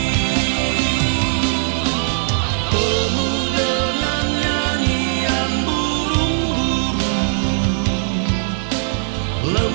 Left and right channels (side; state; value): left; silent; digital silence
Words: Penuh dengan nyanyian burung-burung,